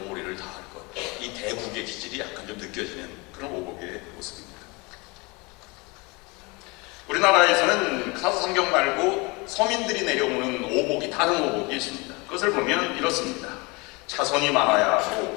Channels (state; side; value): quieter; right; 26.8 dB